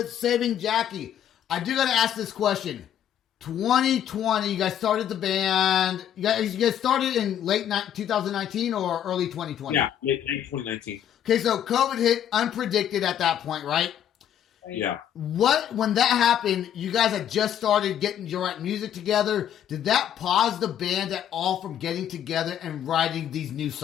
Saving Jackie. I do got to ask this question. 2020, you guys started the band. You guys started in late 2019 or early 2020? Yeah, late 2019. Okay, so COVID hit unpredicted at that point, right? Yeah. When that happened, you guys had just started getting your music together. Did that pause the band at all from getting together and writing these new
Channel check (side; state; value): right; quieter; 10.1 dB